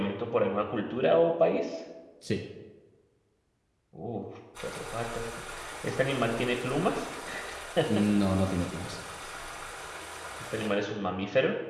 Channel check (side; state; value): both; identical; correlation 1.00